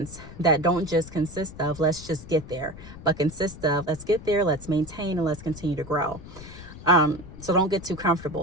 that don't just consist of let's just get there, but consist of let's get there, let's maintain, and let's continue to grow. So don't get too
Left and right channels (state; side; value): noise; left; rumble, 15 dB below the sound